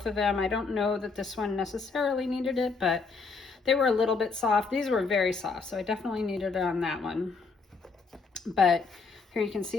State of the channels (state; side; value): quieter; right; 4.5 dB